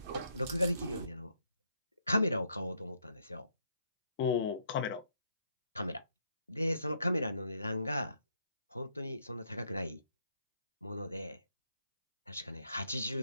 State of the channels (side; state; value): both; inverted; correlation -0.73